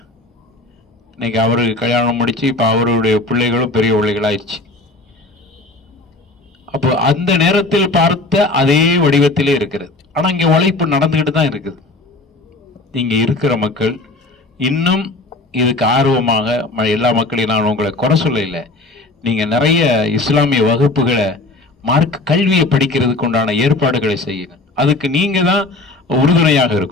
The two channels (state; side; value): quieter; right; 3.1 dB